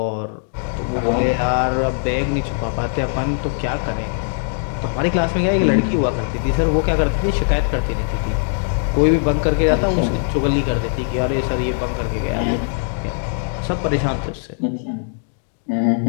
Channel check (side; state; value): right; silent; digital silence